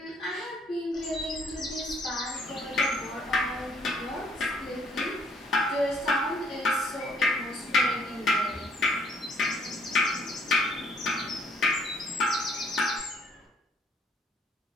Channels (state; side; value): normal; both; correlation 0.64